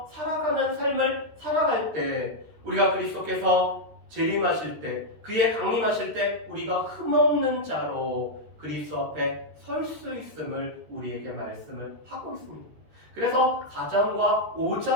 살아가는 삶을 살아갈 때 우리가 그리스도께서 재림하실 때 그의 강림하실 때 우리가 흠없는 자로 그리스도 앞에 설 수 있음을 우리에게 말씀을 하고 있습니다. 그래서 4장과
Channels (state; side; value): late; left; 13 ms